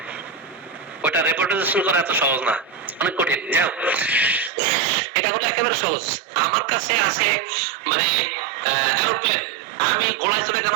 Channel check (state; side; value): drops out; left; at 4.5 s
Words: ওটা রেপার্টরাইজেশন করা এত সহজ না, অনেক কঠিন। যাও, এটা হলো একেবারে সহজ। আমার কাছে আছে মানে এরোপ্লেন, আমি ঘোড়ায় চড়ে কেন